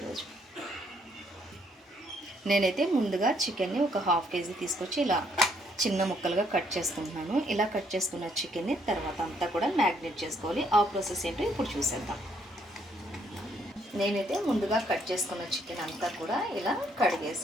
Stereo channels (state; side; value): normal; both; correlation 0.69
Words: నేనైతే ముందుగా చికెన్ని ఒక హాఫ్ కేజీ తీసుకొచ్చి ఇలా చిన్న ముక్కలుగా కట్ చేసుకుంటున్నాను. ఇలా కట్ చేసుకున్న చికెన్ని తర్వాత అంతా కూడా మ్యాగ్నేట్ చేసుకోవాలి. ఆ ప్రాసెస్ ఏంటో ఇప్పుడు చూసేద్దాం. నేనైతే ముందుగా కట్ చేసుకున్న చికెన్ అంతా కూడా ఇలా